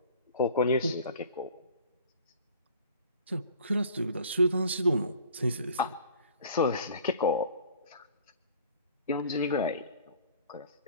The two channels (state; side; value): inverted; both; correlation -0.48